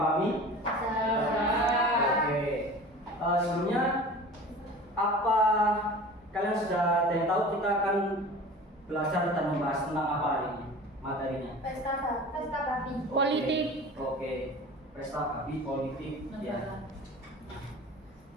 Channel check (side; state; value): both; normal; correlation 0.39